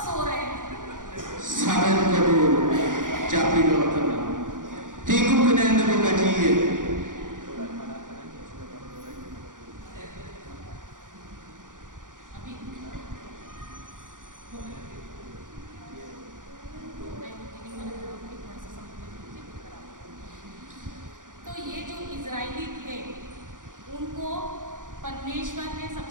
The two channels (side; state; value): left; late; 0.88 ms